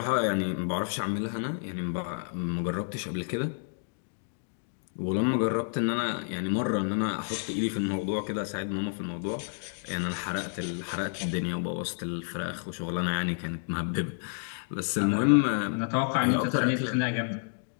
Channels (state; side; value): silent; right; digital silence